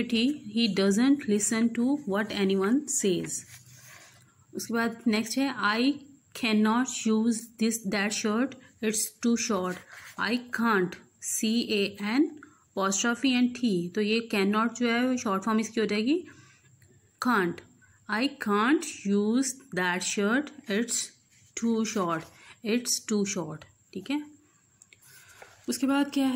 T, he doesn't listen to what anyone says. उसके बाद नेक्स्ट है I cannot use that shirt, it's too short. I can't, CAN apostrophe and T, तो ये cannot जो है शॉर्ट फॉर्म इसकी हो जाएगी can't. I can't use that shirt, it's too short, ठीक है। उसके बाद क्या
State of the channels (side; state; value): both; identical; correlation 1.00